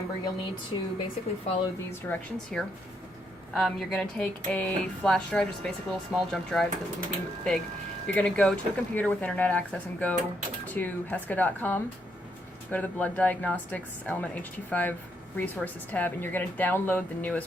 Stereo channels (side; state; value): both; normal; correlation 0.76